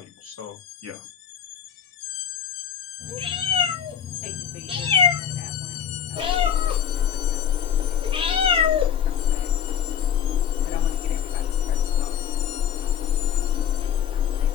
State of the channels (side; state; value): right; quieter; 8.6 dB